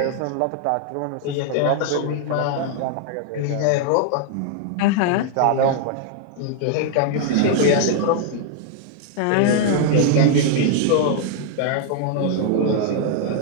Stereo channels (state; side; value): different; both; correlation 0.00